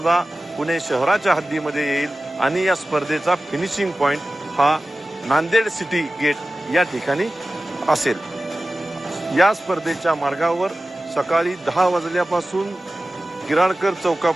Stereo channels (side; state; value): both; normal; correlation 0.96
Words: पुणे शहराच्या हद्दीमध्ये येईल आणि या स्पर्धेचा फिनिशिंग पॉइंट हा नांदेड सिटी गेट या ठिकाणी असेल। या स्पर्धेच्या मार्गावर सकाळी 10 वाजल्यापासून गिराळकर